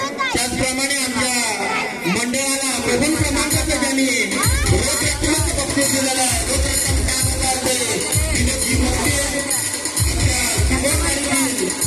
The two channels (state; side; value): identical; both; correlation 1.00